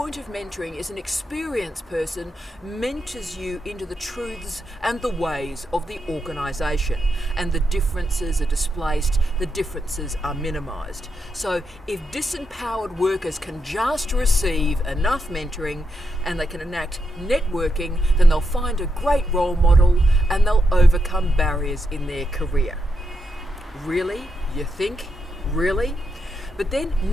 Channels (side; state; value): both; normal; correlation 0.83